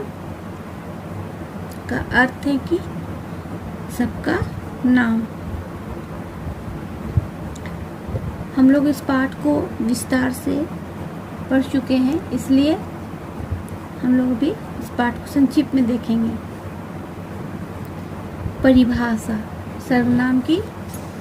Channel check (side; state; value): both; identical; correlation 1.00